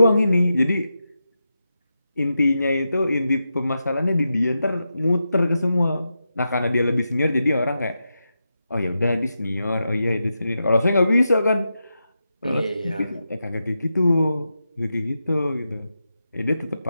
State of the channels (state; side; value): inverted; both; correlation -0.88